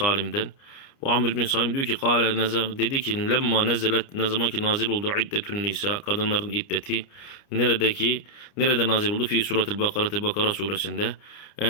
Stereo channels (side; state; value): right; late; 29 ms